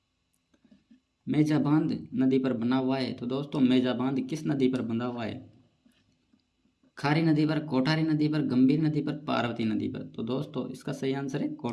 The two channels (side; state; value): both; identical; correlation 1.00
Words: मेजा बांध नदी पर बना हुआ है? तो दोस्तों मेजा बांध किस नदी पर बंधा हुआ है? खारी नदी पर, कोठारी नदी पर, गंभीर नदी पर, पार्वती नदी पर। तो दोस्तों इसका सही आंसर है